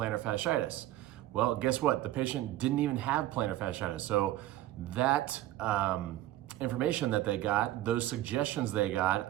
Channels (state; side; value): quieter; left; 14.8 dB